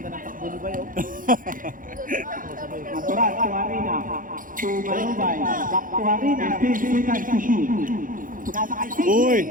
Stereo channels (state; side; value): late; left; 0.40 ms